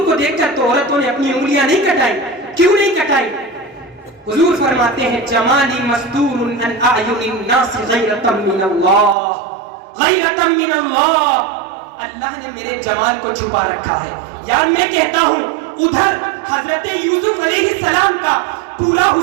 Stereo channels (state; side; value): drops out; left; at 9.2 s